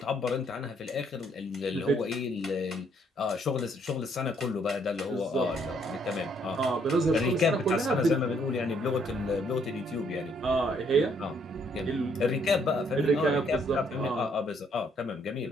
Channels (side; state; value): both; normal; correlation 0.68